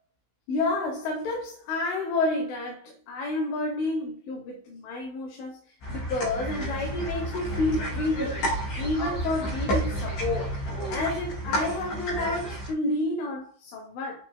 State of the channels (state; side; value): late; right; 15 ms